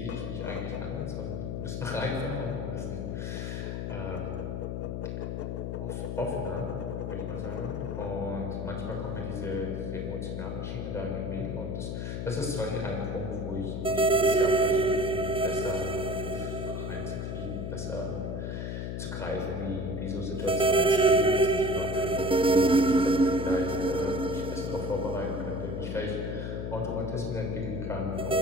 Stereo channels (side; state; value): left; noise; hum, 3 dB below the sound